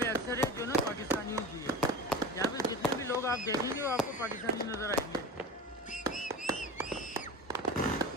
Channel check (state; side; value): normal; both; correlation 0.32